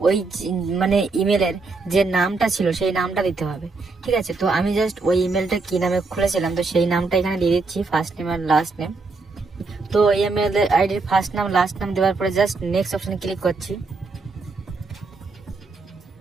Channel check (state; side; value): quieter; left; 3.9 dB